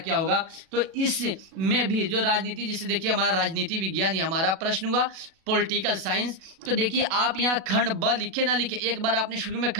होगा, तो इसमें भी जो राजनीति, जिसे देखिए हमारा राजनीति विज्ञान ये हमारा प्रश्न हुआ पॉलिटिकल साइंस। तो देखिए आप यहाँ खंड ब लिखे ना लिखे, एक बार आपने शुरू में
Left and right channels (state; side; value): late; left; 37 ms